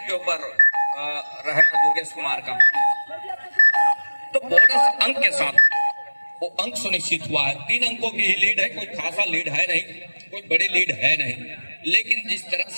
के ऊपर रहना दुर्गेश कुमार का। तो बोनस अंक के साथ वो अंक सुनिश्चित हुआ है। 3 अंकों की ही लीड है, कोई खासा लीड है नहीं, कोई बड़ी लीड है नहीं, लेकिन जिस तरह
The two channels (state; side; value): inverted; both; correlation -1.00